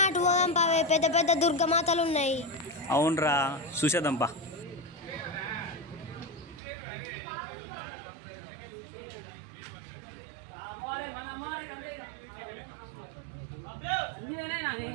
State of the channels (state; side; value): drops out; left; at 6.6 s